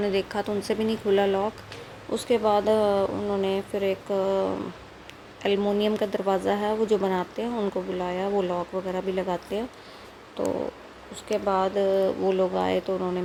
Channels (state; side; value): identical; both; correlation 1.00